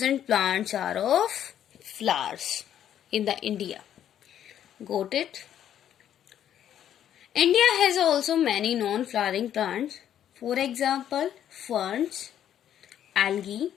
plants are of flowers in the India. Got it? India has also many non-flowering plants. For example, ferns, algae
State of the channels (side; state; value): right; quieter; 10.3 dB